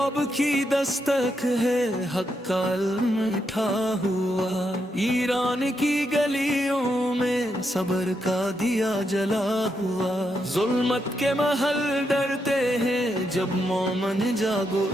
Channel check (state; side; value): normal; both; correlation 0.81